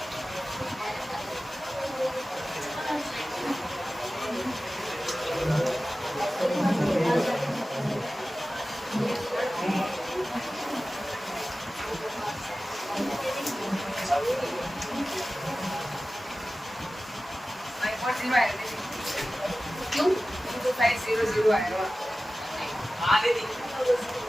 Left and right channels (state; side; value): normal; both; correlation 0.96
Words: क्यों? 500 आएगा। हाँ दीदी।